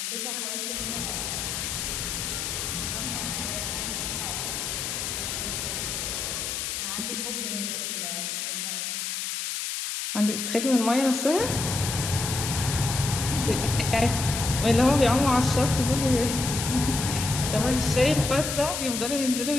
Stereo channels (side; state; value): left; noise; hiss, 3 dB below the sound